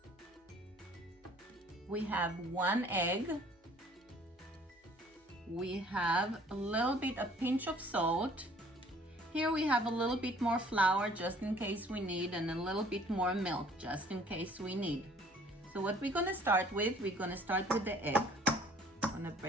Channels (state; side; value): normal; both; correlation 0.55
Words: We have 1 egg. We have a pinch of salt. Here we have a little bit more flour just in case we need, and a little bit more milk just in case we need. So what we're gonna start with, the egg. I'm gonna